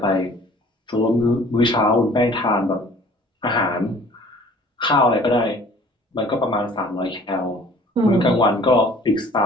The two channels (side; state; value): both; normal; correlation 0.51